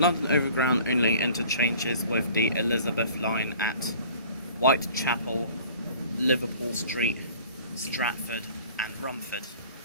Overground only interchanges with the Elizabeth Line at Whitechapel, Liverpool Street, Stratford and Romford.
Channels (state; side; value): inverted; both; correlation -0.49